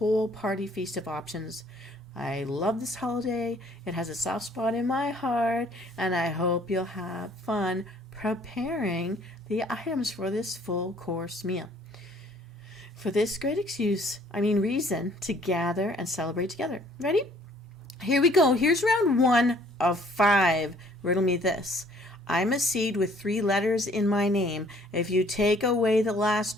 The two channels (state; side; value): normal; both; correlation 0.59